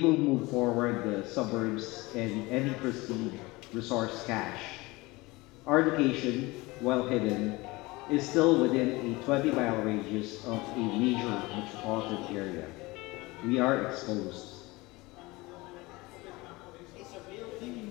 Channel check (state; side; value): quieter; right; 22.3 dB